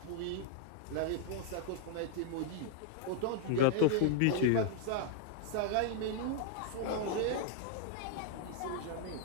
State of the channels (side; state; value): both; different; correlation 0.00